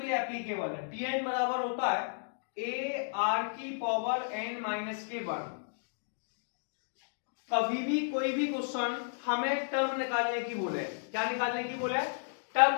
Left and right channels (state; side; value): silent; right; digital silence